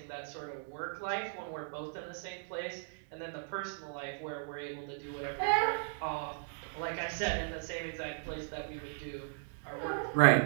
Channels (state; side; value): silent; left; digital silence